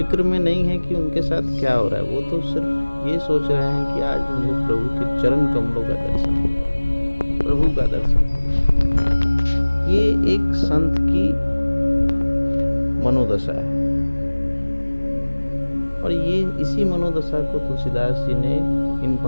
में नहीं है कि उनके साथ क्या हो रहा है, वो तो सिर्फ ये सोच रहे हैं कि आज मुझे प्रभु के चरण कमलों का दर्शन होगा, प्रभु का दर्शन होगा। ये एक संत की मनोदशा है और ये इसी मनोदशा को तुलसीदास जी ने इन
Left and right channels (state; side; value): inverted; both; correlation -1.00